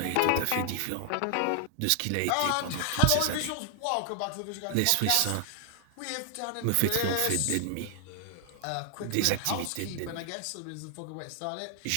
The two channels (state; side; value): different; both; correlation 0.00